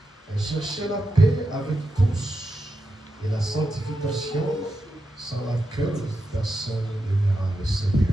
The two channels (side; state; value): both; normal; correlation 0.87